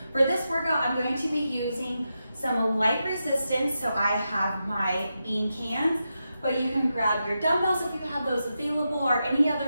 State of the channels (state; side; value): inverted; both; correlation -0.88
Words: For this workout, I'm going to be using some light resistance, so I have my bean cans, but you can grab your dumbbells if you have those available or any